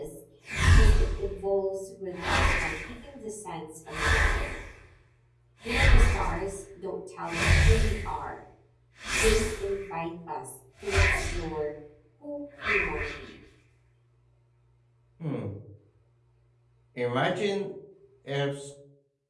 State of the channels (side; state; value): both; identical; correlation 1.00